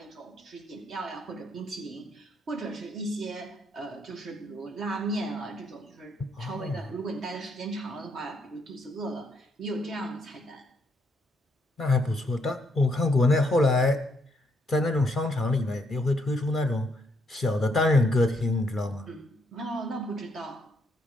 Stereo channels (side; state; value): both; normal; correlation 0.74